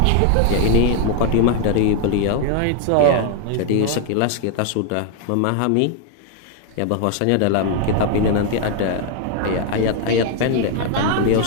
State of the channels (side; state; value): both; different; correlation 0.00